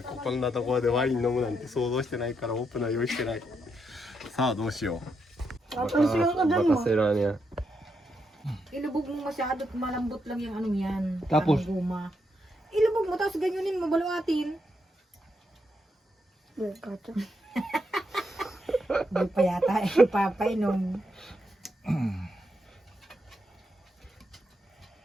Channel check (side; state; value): both; normal; correlation 0.80